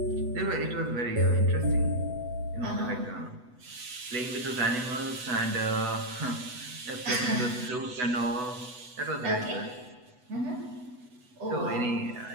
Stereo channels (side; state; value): left; late; 8.0 ms